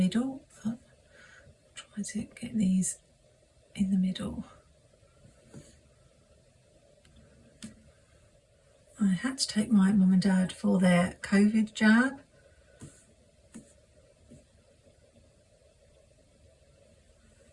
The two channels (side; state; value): both; identical; correlation 1.00